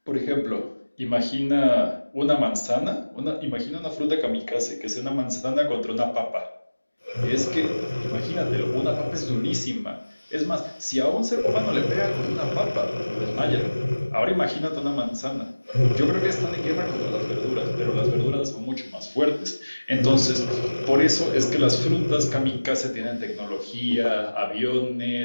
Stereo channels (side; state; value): both; inverted; correlation -1.00